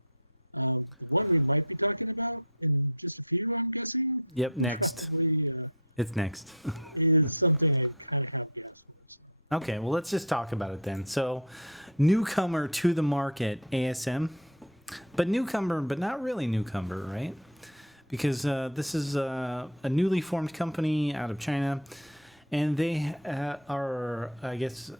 wavetable. What we might be talking about in just a few, I'm guessing, Yep, next. It's next. is something like Okay, well, let's just talk about it then. So, newcomer to the market, ASM. But newcomer, but not really newcomer, right? because this is a newly formed company out of China, and they are, I guess,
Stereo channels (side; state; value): both; normal; correlation 0.17